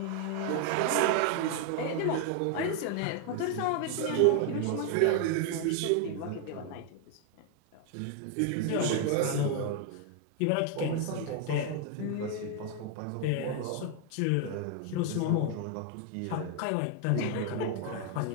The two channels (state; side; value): different; both; correlation 0.00